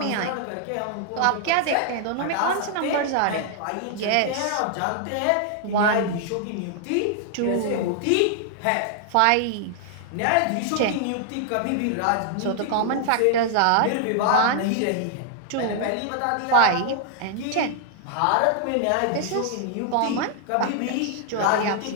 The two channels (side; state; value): both; different; correlation 0.00